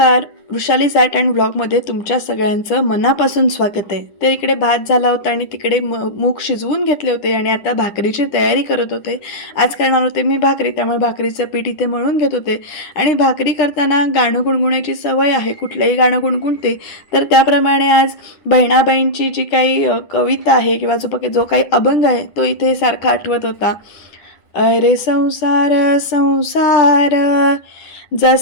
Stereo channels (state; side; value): late; right; 9.9 ms